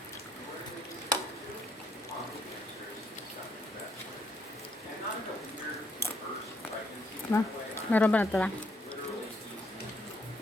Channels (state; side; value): normal; both; correlation 0.71